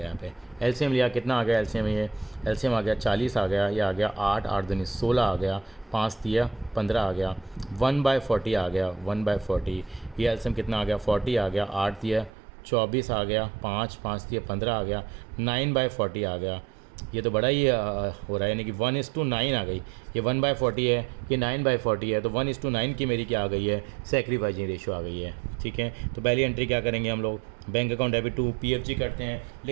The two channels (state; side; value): drops out; left; at 12.3 s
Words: यहाँ पे एलसीएम लिया, कितना आ गया एलसीएम, ये एलसीएम आ गया 40 आ गया, ये आ गया 8 8 दूनी 16 आ गया, 5 दिया 15 आ गया, 1/40 आ गया, 1/40। ये एलसीएम कितना आ गया 40 आ गया, 8 दिया 24 आ गया, 5 5 दिया 15 आ गया, 9/40 आ गया। ये तो बड़ा ही हो रहा है, यानी कि 1:9 आ गई। ये 1/40 है, ये 9/40 है, तो 1:9 की मेरी क्या आ गई है, सेक्रीफाइजिंग रेशो आ गई है। ठीक है, तो पहली एंट्री क्या करेंगे हम लोग, bank account debit to PFG करते हैं।